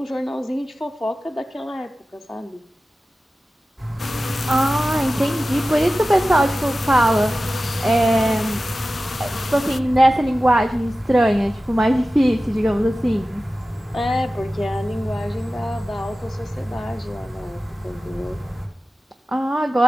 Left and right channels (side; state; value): both; normal; correlation 0.95